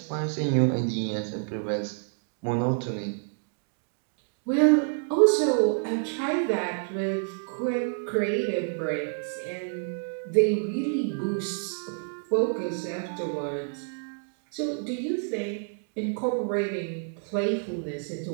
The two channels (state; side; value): silent; left; 59 dB below the other